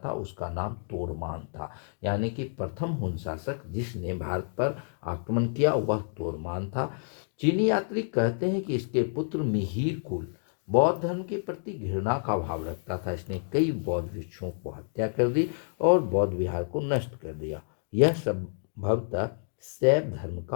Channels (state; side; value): silent; right; digital silence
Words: उसका नाम तोड़मान था, यानी कि प्रथम हून शासक जिसने भारत पर आक्रमण किया वह तोड़मान था। चीनी यात्री कहते हैं कि इसके पुत्र मिहिर कुल बौद्ध धर्म के प्रति घृणा का भाव रखता था। इसने कई बौद्ध भिक्षुओं को हत्या कर दी और बौद्ध विहार को नष्ट कर दिया। यह संभवतः शैव धर्म